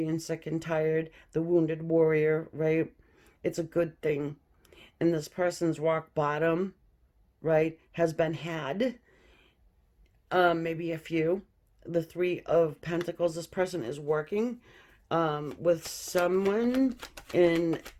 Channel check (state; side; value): identical; both; correlation 1.00